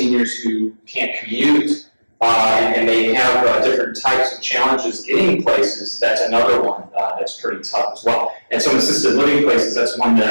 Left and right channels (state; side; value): inverted; both; correlation -1.00